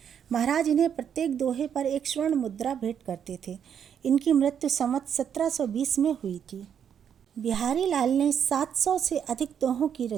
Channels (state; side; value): quieter; left; 8.3 dB